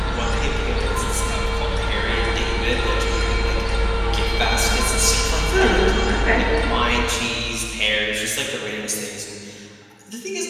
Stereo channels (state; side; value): identical; both; correlation 1.00